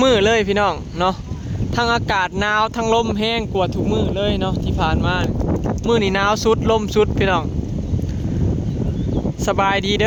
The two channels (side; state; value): both; identical; correlation 1.00